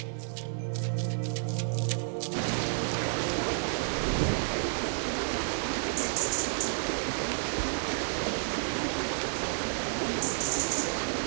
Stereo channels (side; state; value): left; silent; digital silence